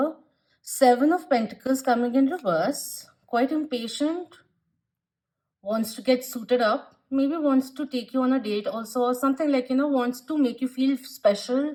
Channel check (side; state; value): both; identical; correlation 1.00